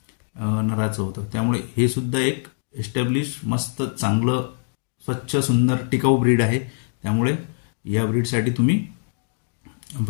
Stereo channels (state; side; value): silent; right; digital silence